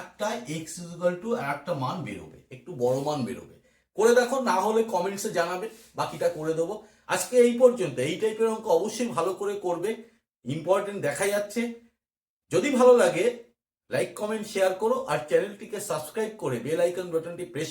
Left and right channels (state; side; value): identical; both; correlation 1.00